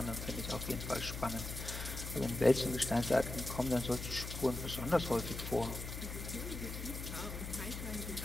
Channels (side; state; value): left; noise; hum, 7 dB below the sound